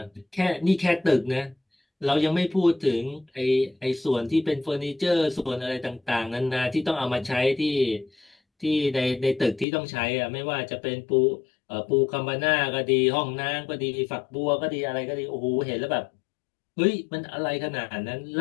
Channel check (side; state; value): right; drops out; at 9.7 s